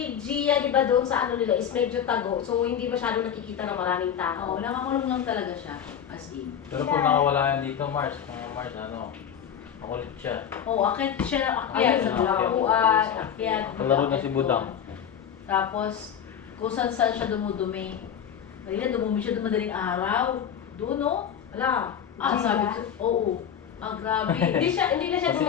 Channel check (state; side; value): quieter; right; 8.6 dB